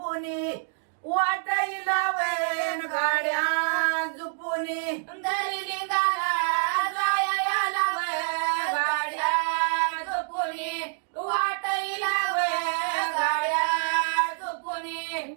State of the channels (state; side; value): silent; left; digital silence